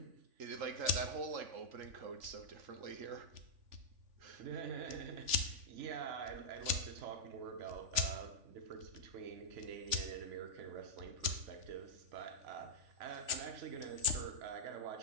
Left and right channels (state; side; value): late; left; 3.5 ms